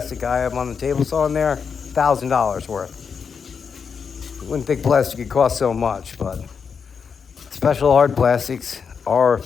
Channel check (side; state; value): right; quieter; 6.2 dB